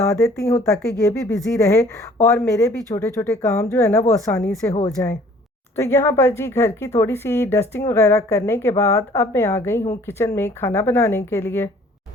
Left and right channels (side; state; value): both; normal; correlation 0.54